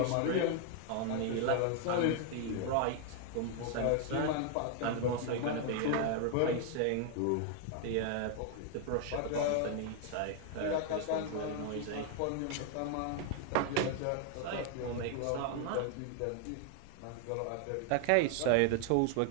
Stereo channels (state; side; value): different; both; correlation 0.00